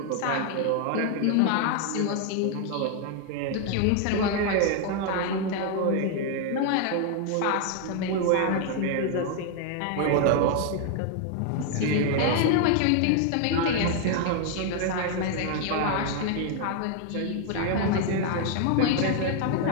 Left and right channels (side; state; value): both; different; correlation 0.00